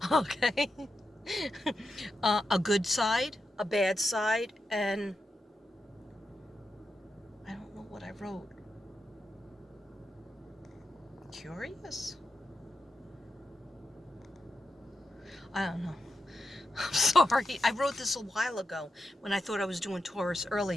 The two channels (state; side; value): normal; both; correlation 0.87